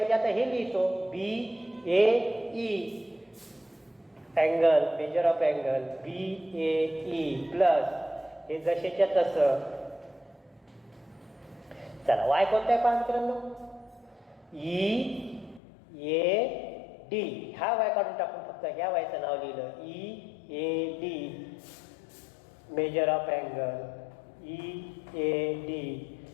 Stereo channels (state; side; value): drops out; right; at 15.6 s